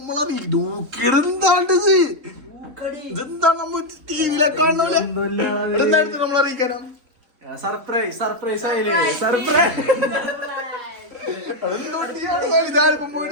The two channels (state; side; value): late; left; 3.6 ms